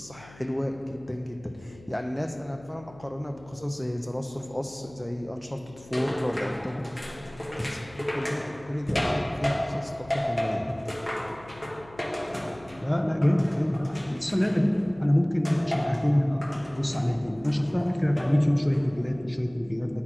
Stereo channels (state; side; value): noise; left; hum, 22 dB below the sound